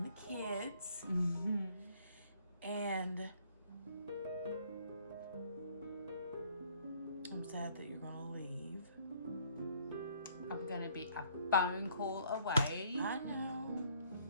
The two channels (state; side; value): inverted; both; correlation -0.62